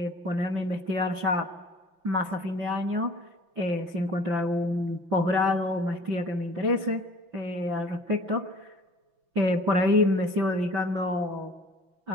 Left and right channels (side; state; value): left; late; 5.9 ms